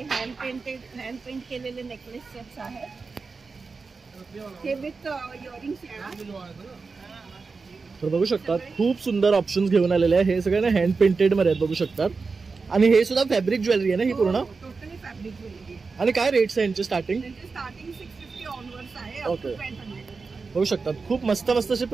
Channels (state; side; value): quieter; left; 4.5 dB